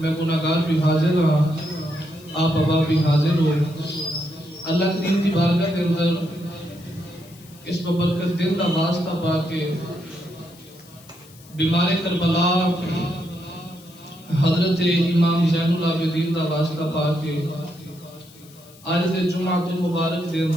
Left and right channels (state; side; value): noise; left; hiss, 24 dB below the sound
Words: گناہگار بھی حاضر ہاں آپ ابا بھی حاضر ہو اللہ کریم دی بارگاہ کے اندر اس ببرکت دل دا واسطہ پا کے بیمار کربلا حضرت امام زین العابدین دا واسطہ پا کے آج دے جمعۃ المبارک دے